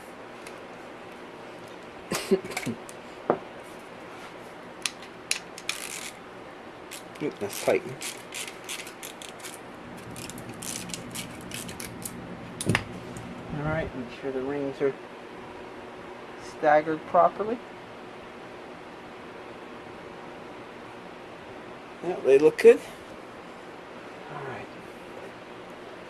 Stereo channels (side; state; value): both; identical; correlation 1.00